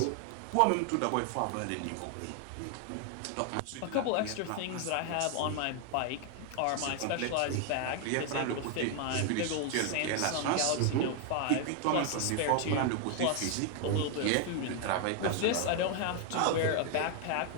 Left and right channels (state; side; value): different; both; correlation 0.00